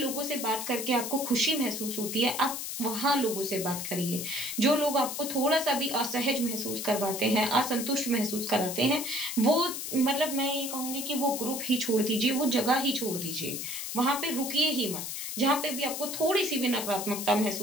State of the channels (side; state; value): left; noise; hiss, 5 dB below the sound